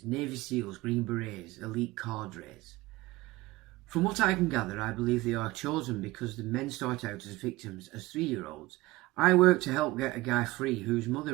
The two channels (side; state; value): left; quieter; 19.5 dB